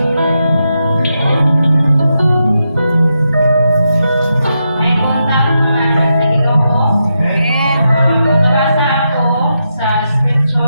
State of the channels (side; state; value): both; inverted; correlation -0.85